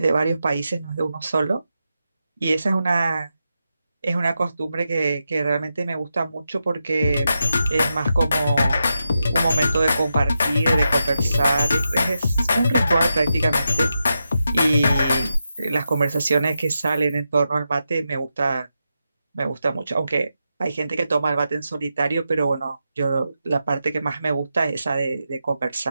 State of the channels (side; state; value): both; inverted; correlation -0.87